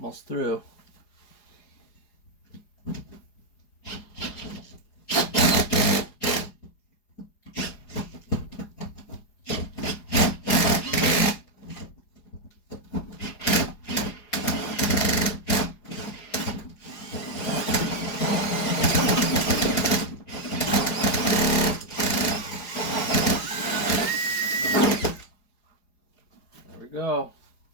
through. There we go.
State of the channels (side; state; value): right; late; 4.8 ms